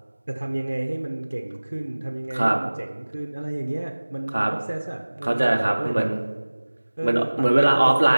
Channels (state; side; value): inverted; both; correlation -1.00